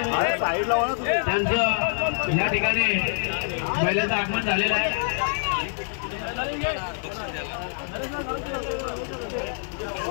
त्यांचं या ठिकाणी बैलाचं आगमन झालेलं आहे।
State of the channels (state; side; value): silent; right; digital silence